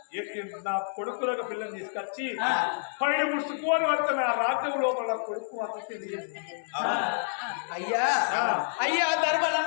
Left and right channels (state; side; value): silent; right; 59 dB below the other